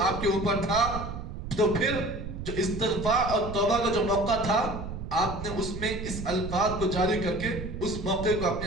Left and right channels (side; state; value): right; noise; rumble, 8 dB below the sound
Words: کے اوپر تھا تو پھر جو استغفار اور توبہ کا جو موقع تھا آپ نے اس میں اس الفاظ کو جاری کر کے اس موقع کو